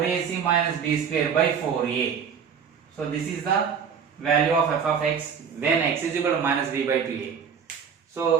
minus b square by 4a. So this is the value of f of x when x is equal to minus b by 2a.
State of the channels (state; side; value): quieter; left; 7.0 dB